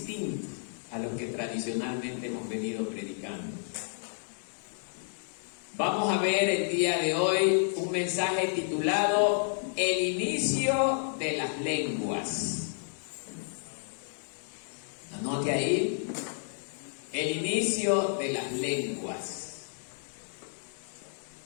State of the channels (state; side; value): silent; right; 57 dB below the other